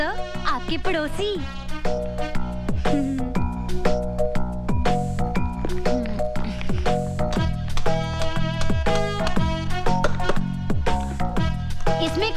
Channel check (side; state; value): both; identical; correlation 1.00